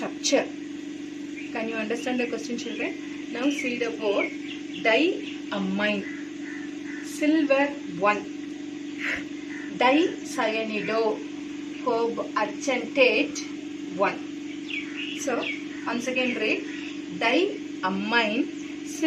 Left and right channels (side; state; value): both; identical; correlation 1.00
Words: Can you understand the question children? Now see the word diamine, silver 1, dicyanide, argentate 1. So once again read diamine,